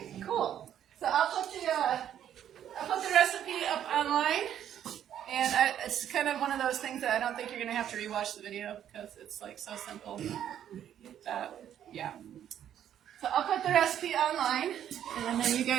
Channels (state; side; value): quieter; left; 10.2 dB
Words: Cool. So I'll put the recipe up online, and it's kind of one of those things that I don't think you're gonna have to rewatch the video because it's like so simple. Yeah. So I'll put the recipe online, and then you